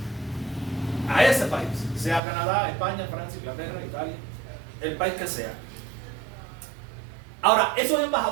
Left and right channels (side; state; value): left; drops out; at 2.2 s